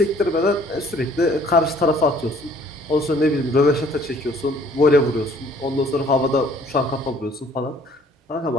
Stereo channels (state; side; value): normal; both; correlation 0.57